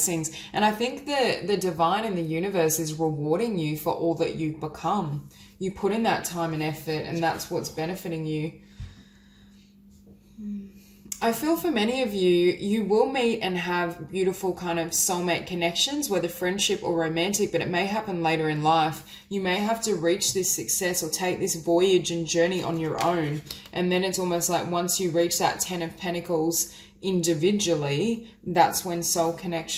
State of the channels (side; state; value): both; identical; correlation 1.00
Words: And I think the divine in the universe is rewarding you for all that you've become. You put in that time and effort, and that's what's benefiting you. I feel for many of you, you will meet and have beautiful kind of soulmate connections, whether friendship or romantic, but it may happen later in life. You may have to reach this success or take this voyage and journey on your own. And then it's almost like once you reach that 10 of Pentacles individually, that's when soul